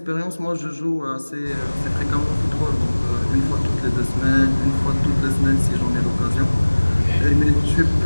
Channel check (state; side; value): inverted; both; correlation -1.00